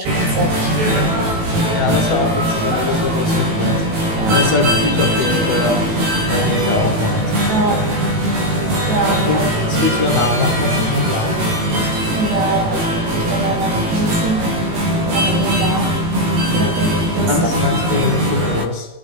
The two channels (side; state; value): left; late; 18 ms